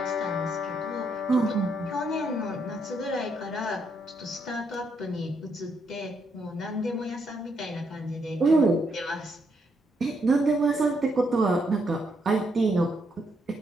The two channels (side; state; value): both; normal; correlation 0.76